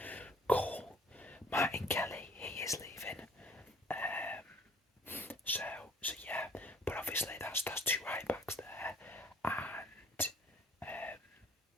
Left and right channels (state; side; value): normal; both; correlation 0.55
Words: Cool. Martin Kelly, he is leaving. So yeah, but obviously that's two right backs there, and